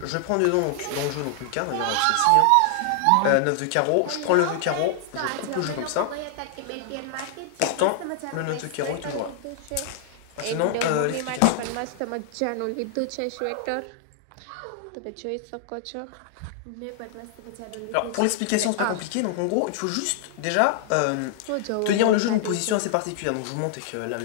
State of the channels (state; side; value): different; both; correlation 0.00